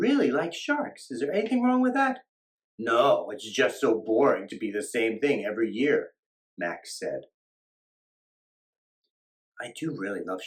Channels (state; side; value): identical; both; correlation 1.00